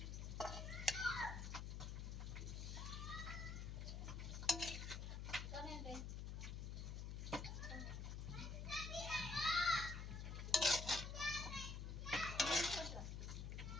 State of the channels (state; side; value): noise; left; hum, 4 dB below the sound